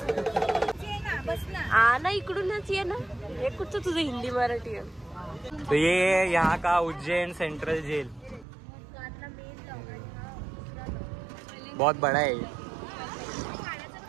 ना इकडूनच ये ना. हे कुठचं तुझं हिंदी मराठी आहे? तो ये यहाँ का उज्जैन सेंट्रल जेल बहुत बड़ा है.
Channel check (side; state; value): left; drops out; at 8.5 s